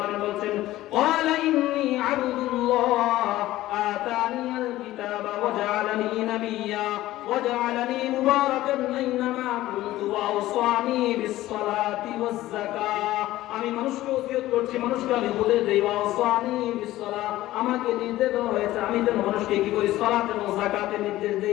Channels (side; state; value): right; quieter; 15.8 dB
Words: বলেন, ক্বালা ইন্নী আবদুল্লাহ আতানিয়াল কিতাবা ওয়া জাআলানি নাবিয়্যা ওয়া জাআলানি মুবারাকান আইনামা কুনতু ওয়া আওসানি বিস সালাতি ওয়াজ যাকাত। আমি মানুষকে ওসিয়ত করছি, মানুষকে আমি বলে দেই, ওয়া আওসানি বিস সালাত, আমাকে নির্দেশ দেওয়া হয়েছে আমি যেন মানুষকে কি করি সালাত এবং যাকাতের নির্দেশ